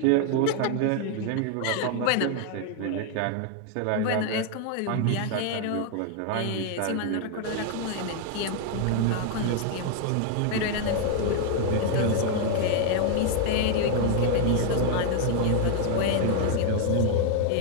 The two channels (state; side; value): different; both; correlation 0.00